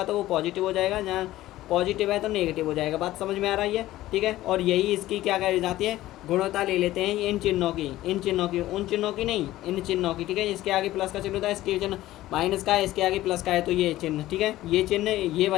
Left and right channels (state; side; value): quieter; right; 15.6 dB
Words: तो वो पॉजिटिव हो जाएगा, यहाँ पॉजिटिव है तो नेगेटिव हो जाएगा। बात समझ में आ रही है, ठीक है। और यही इसकी क्या कही जाती है, गुणवत्ता ले लेते हैं इन चिन्हों की, इन चिन्हों की, उन चिन्हों की नहीं, इन चिन्हों की, ठीक है। इसके आगे प्लस का चिन्ह होता है, इसके चिन्ह माइनस का है, इसके आगे प्लस का है, तो ये चिन्ह, ठीक है, ये चिन्ह ये